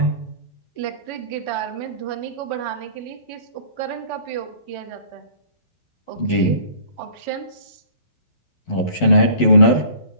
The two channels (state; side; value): late; right; 11 ms